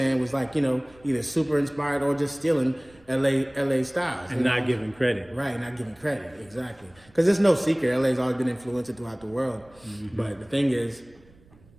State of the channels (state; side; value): noise; right; rumble, 28 dB below the sound